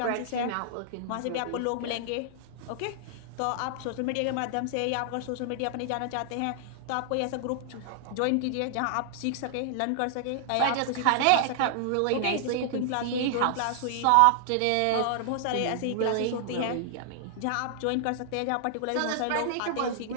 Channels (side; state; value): both; different; correlation -0.01